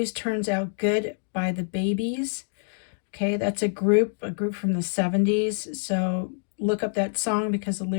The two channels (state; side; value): silent; right; digital silence